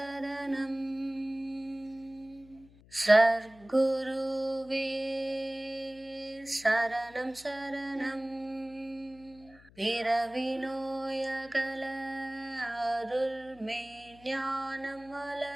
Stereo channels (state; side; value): noise; left; hum, 24 dB below the sound